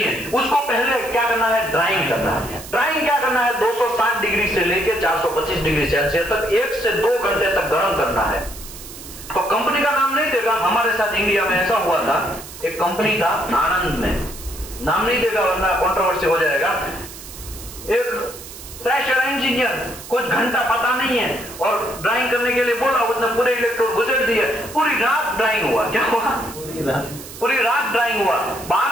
है। उसको पहले क्या करना है? ड्राइंग करना है। ड्राइंग क्या करना है? 260 डिग्री से लेकर 425 डिग्री सेल्सियस तक 1 से 2 घंटे तक गर्म करना है। तो कंपनी का नाम नहीं देगा। हमारे साथ इंडिया में ऐसा हुआ था, एक कंपनी था आनंद में, नाम नहीं देगा वरना कंट्रोवर्सी हो जाएगा। एक प्रेशर इंजीनियर कुछ घंटा पता नहीं है और ड्राइंग करने के लिए बोला, उसने पूरे इलेक्ट्रोड घुसेड़ दिए, पूरी रात ड्राइंग हुआ। क्या हुआ? पूरी रात ड्राइंग हुआ।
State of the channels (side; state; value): right; noise; hiss, 14 dB below the sound